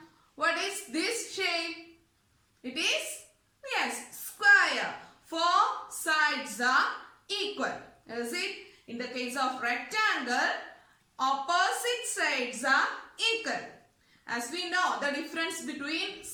what is this shape? It is, yes, square. Four sides are equal. Is it? In the case of rectangle, opposite sides are equal. As we know, the difference between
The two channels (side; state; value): both; identical; correlation 1.00